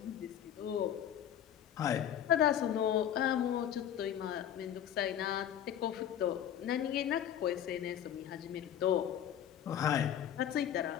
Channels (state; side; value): quieter; right; 10.1 dB